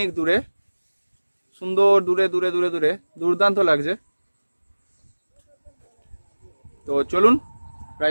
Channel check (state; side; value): inverted; both; correlation -1.00